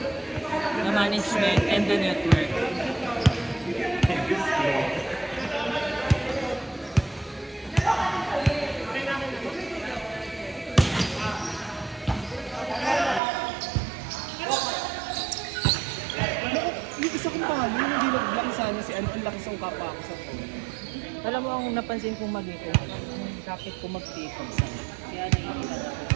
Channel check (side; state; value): left; drops out; at 13.2 s